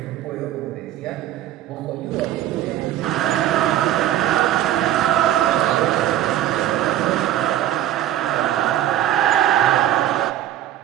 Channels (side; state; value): left; quieter; 12.4 dB